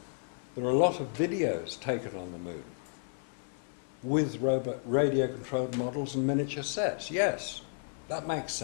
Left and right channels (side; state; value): right; silent; 56 dB below the other